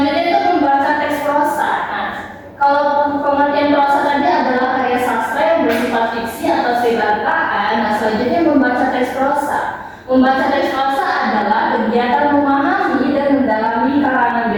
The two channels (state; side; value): identical; both; correlation 1.00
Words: itu membaca teks prosa. Nah, kalau pengertian prosa tadi Membaca teks prosa adalah kegiatan memahami dan mendalami karangan